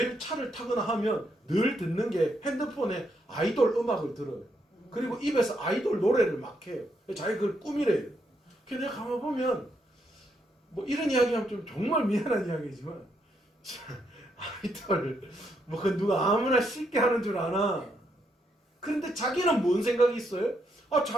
차를 타거나 하면 늘 듣는 게 핸드폰에 아이돌 음악을 들어요. 그리고 입에서 아이돌 노래를 막 해요. 자기 그걸 꾸미래요. 그래서 내가 가만 보면 뭐 이런 이야기하면 좀 정말 미안한 이야기지만 아이돌 뭐 그 누가 아무나 쉽게 하는 줄 아나. 그런데 자기는 뭔 생각이 있어요? 아,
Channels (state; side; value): normal; both; correlation 0.77